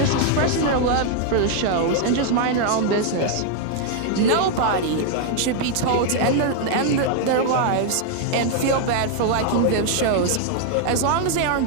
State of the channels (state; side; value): different; both; correlation 0.00